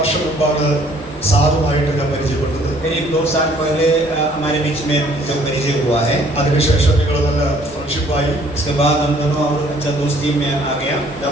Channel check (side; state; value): both; normal; correlation 0.59